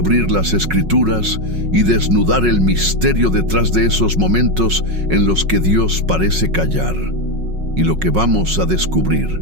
las Escrituras y desnudar el misterio detrás de esos momentos en los que Dios parece callar. Y lo que vamos a descubrir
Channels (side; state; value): left; late; 5.4 ms